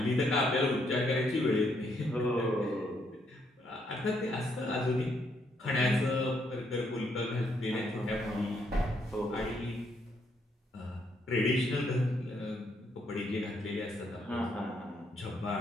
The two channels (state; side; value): normal; both; correlation 0.74